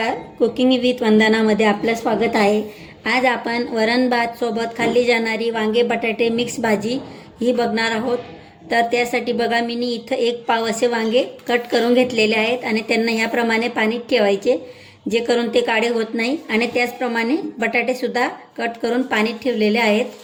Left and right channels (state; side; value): identical; both; correlation 1.00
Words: Cooking with वंदनामध्ये आपलं स्वागत आहे. आज आपण वरण भात सोबत खाल्ली जाणारी वांगे बटाटे मिक्स भाजी ही बघणार आहोत. तर त्यासाठी बघा मी इथं एक पाव असे वांगे कट करून घेतलेले आहेत आणि त्यांना ह्याप्रमाणे पाण्यात ठेवायचे जे करून ते काळे होत नाही. आणि त्याचप्रमाणे बटाटेसुद्धा कट करून पाण्यात ठेवलेले आहेत.